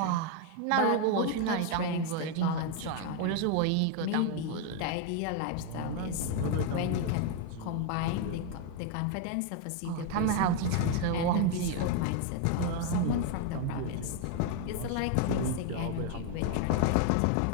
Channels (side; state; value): both; different; correlation 0.01